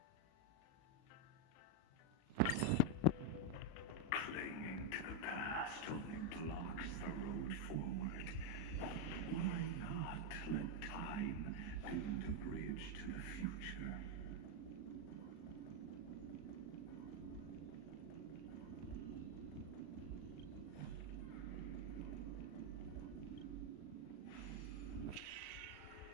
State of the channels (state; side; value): late; right; 37 ms